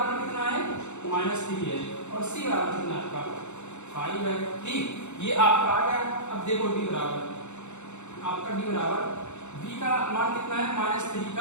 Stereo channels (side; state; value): right; late; 0.83 ms